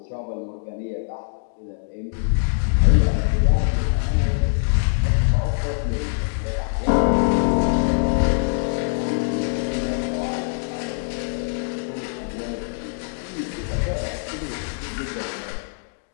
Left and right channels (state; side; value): silent; right; digital silence